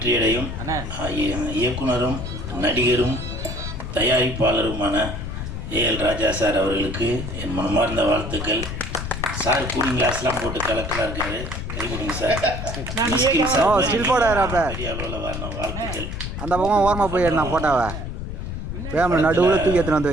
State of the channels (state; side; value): noise; left; rumble, 6 dB below the sound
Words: இயக்குனரும் நடிகரும் தயாரிப்பாளருமான ஏஎல் ராஜா சார் அவர்களுக்கு என் மனமார்ந்த வாழ்த்துக்கள். சார் கூலிங் கிளாஸ்லாம் போட்டு கலக்கலாக இருக்காரு. கைவிடுங்க சார். பெரிய அளவில் வரணும். வாழ்த்துக்கள். அந்த பக்கம் ஓரமாக போய் நான் போட்டாவா கேமரா நடுவில் தூக்கி எடுத்துன்னு வந்து